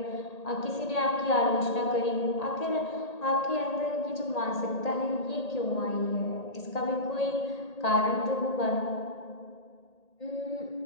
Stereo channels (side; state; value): right; late; 1.8 ms